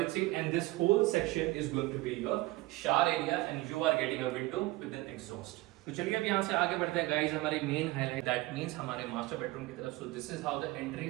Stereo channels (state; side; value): quieter; left; 19.5 dB